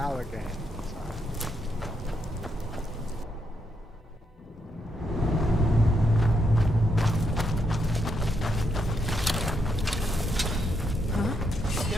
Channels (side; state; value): both; normal; correlation 0.79